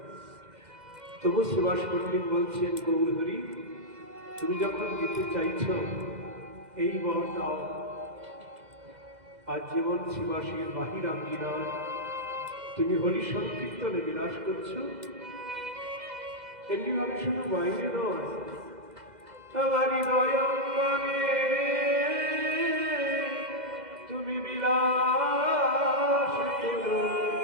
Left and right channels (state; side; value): late; left; 2.0 ms